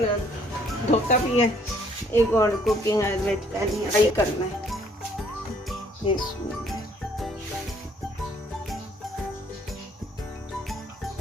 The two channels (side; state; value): both; normal; correlation 0.63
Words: धोता भी है, एक और कुकिंग फ्राई करना है।